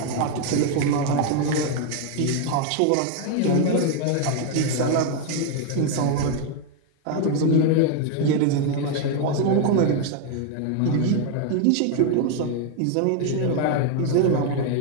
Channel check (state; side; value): different; both; correlation 0.01